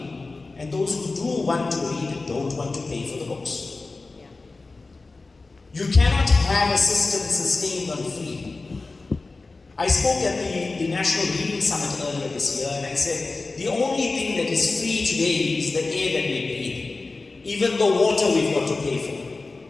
and those who do want to read don't want to pay for the books. You cannot have a system sustained on free. I spoke at the National Reading Summit earlier this year, and I said, the only thing that is free today is the air that we breathe. Even the water we've got to pay for.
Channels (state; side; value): quieter; right; 3.6 dB